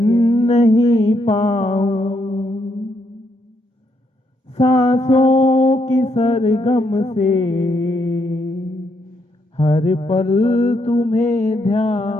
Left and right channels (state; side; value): normal; both; correlation 0.76